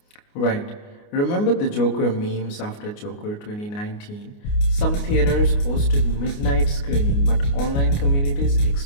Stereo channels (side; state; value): right; late; 29 ms